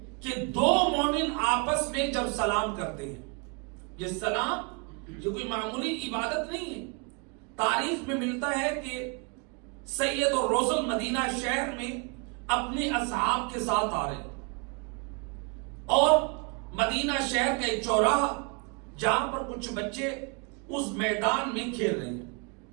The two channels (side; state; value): left; quieter; 33.9 dB